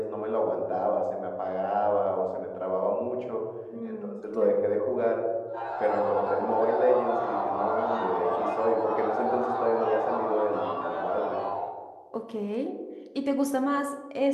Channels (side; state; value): both; identical; correlation 1.00